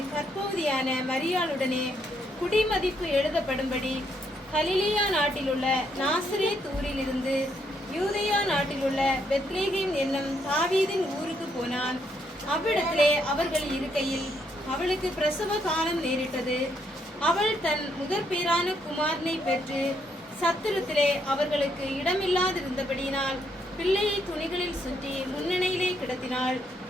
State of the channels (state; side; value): normal; both; correlation 0.74